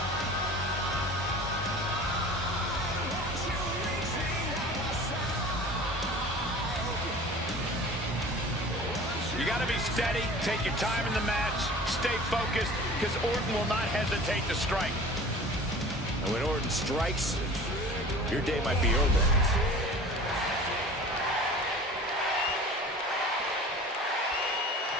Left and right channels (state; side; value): normal; both; correlation 0.41